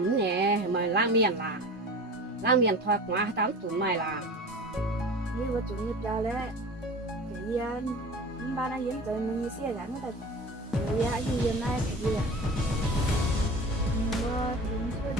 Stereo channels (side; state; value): both; normal; correlation 0.36